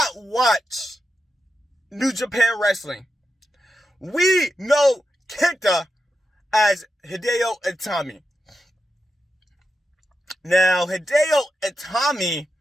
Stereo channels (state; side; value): normal; both; correlation 0.88